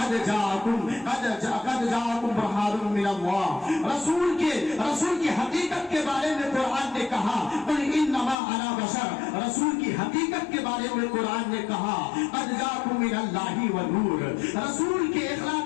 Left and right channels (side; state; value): right; drops out; at 8.3 s